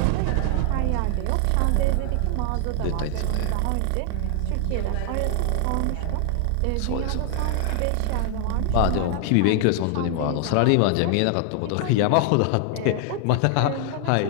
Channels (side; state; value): both; different; correlation 0.00